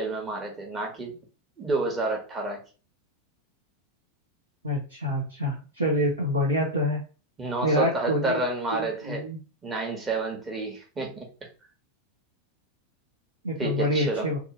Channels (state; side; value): normal; both; correlation 0.07